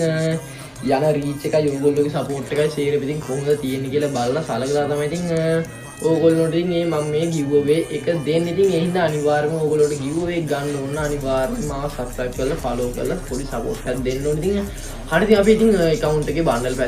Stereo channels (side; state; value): both; identical; correlation 1.00